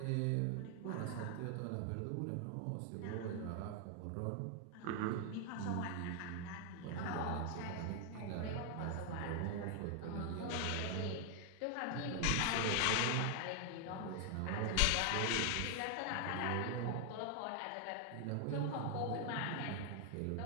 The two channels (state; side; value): different; both; correlation 0.00